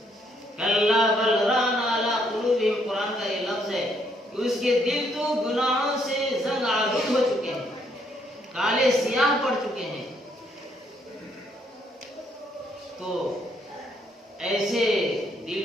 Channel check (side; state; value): both; normal; correlation 0.71